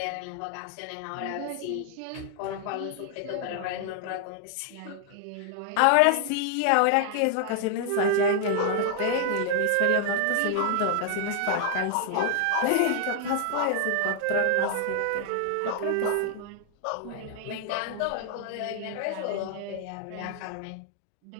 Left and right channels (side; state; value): both; different; correlation 0.00